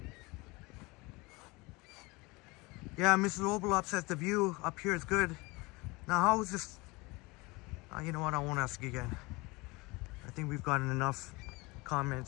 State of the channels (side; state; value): right; quieter; 24.3 dB